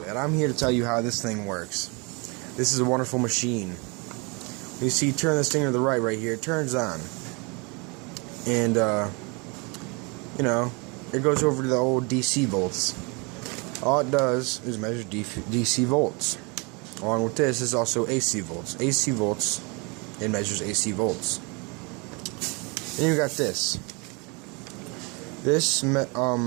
that. I'm here to tell you how this thing works. This is a wonderful machine. You see, turn this thing to the right here, it turns on. And, it goes over to the old DC volts. All it does is measure DC volts. Along with this is also AC volts. AC volts, it measures AC volts. Then you got this. This,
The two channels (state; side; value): quieter; left; 30.2 dB